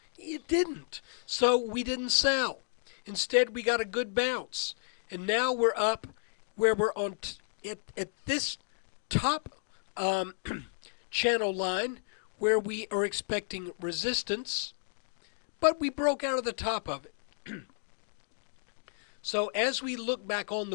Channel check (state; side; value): silent; right; digital silence